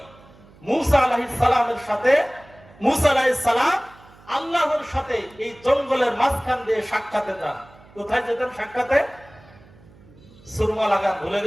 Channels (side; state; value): right; noise; hum, 25 dB below the sound